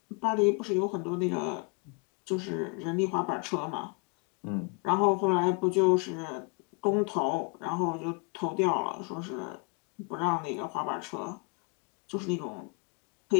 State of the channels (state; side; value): quieter; right; 31.5 dB